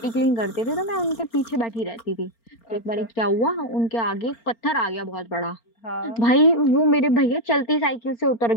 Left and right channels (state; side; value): late; right; 4.4 ms